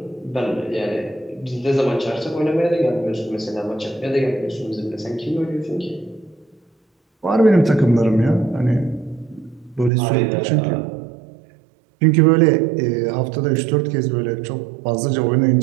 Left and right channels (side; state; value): left; drops out; at 9.9 s